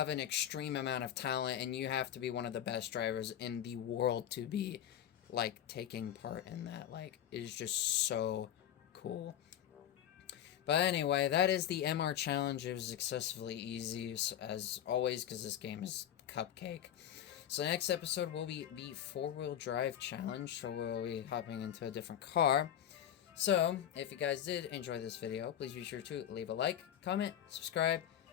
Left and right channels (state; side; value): quieter; right; 10.5 dB